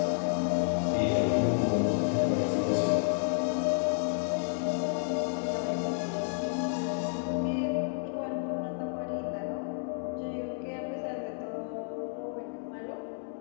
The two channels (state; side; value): silent; right; digital silence